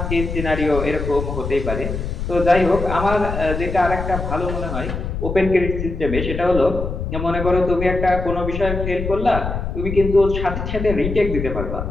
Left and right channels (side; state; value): left; noise; rumble, 5 dB below the sound